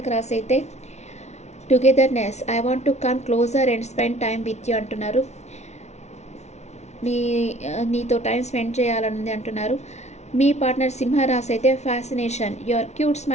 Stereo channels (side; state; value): right; late; 0.32 ms